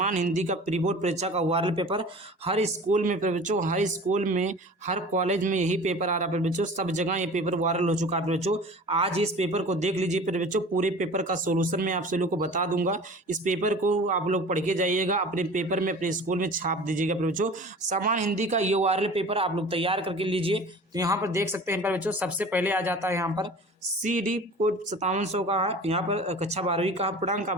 हिंदी का प्री बोर्ड परीक्षा का ओरल पेपर। हर स्कूल में बच्चों, हर स्कूल में, हर कॉलेज में यही पेपर आ रहा है बच्चों, सब जगह ये पेपर वायरल हो चुका है बच्चों। आज इस पेपर को देख लीजिए बच्चों, पूरे पेपर का सोल्यूशन मैं आप सभी लोग को बता दूंगा। इस पेपर को आप लोग पढ़ के जाइएगा, अपने पेपर में अपने स्कूल में छाप दीजिएगा बच्चों। समान हिंदी का ये वायरल पेपर आप लोग तैयार करके लीजिए। तो यहाँ पर देख सकते हैं बच्चों, सबसे पहले आ जाता है यहाँ पर CD कोड 5700 का है। यहाँ पर कक्षा 12वीं का पूर्णांक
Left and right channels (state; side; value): normal; both; correlation 0.40